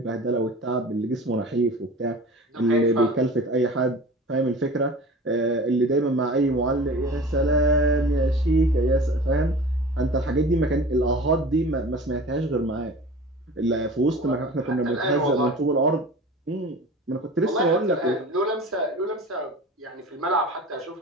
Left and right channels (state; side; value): normal; both; correlation 0.38